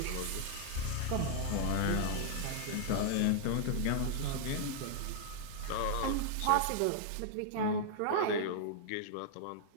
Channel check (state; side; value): different; both; correlation -0.01